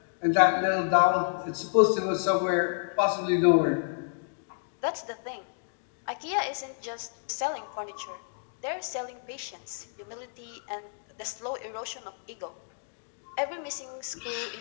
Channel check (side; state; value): right; silent; digital silence